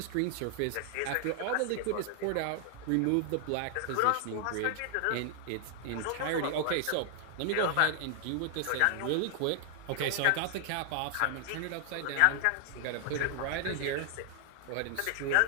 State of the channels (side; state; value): both; different; correlation 0.00